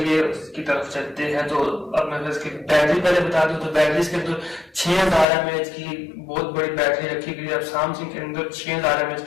इसकी तरफ चलते हैं। तो अब मैं इसकी बैटरी पहले बता दूं तो बैटरी इसके अंदर 6000 mAh की बहुत बड़ी बैटरी रखी गई है। अब सैमसंग के अंदर 6000 mAh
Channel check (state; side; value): drops out; right; at 5.2 s